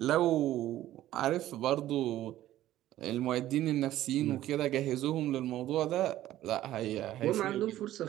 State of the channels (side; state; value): left; quieter; 13.9 dB